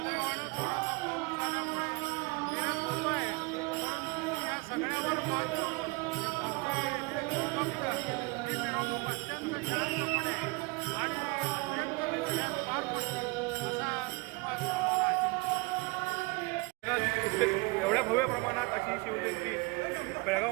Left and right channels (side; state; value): left; quieter; 26.7 dB